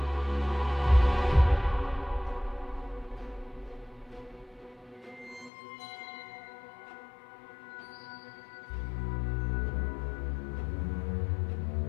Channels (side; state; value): right; drops out; at 5.5 s